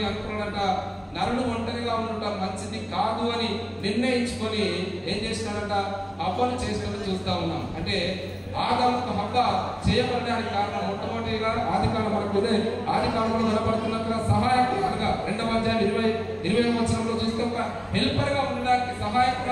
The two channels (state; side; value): identical; both; correlation 1.00